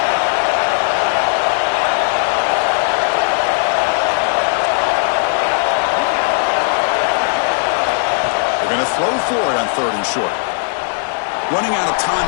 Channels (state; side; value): silent; right; digital silence